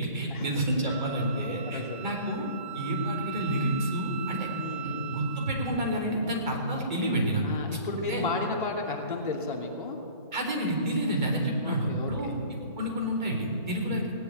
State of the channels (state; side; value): inverted; both; correlation -0.44